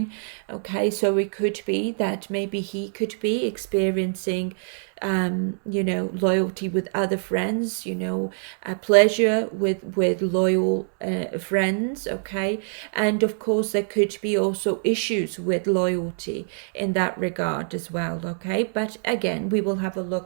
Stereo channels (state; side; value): silent; left; 57 dB below the other